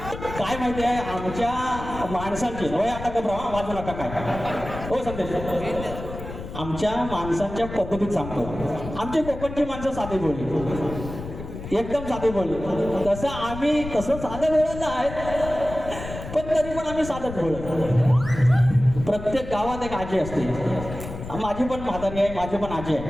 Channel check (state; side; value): noise; left; rumble, 10 dB below the sound